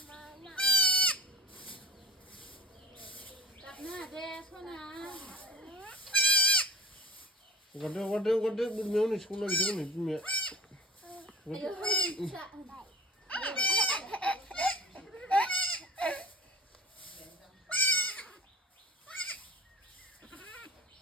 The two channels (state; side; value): normal; both; correlation 0.40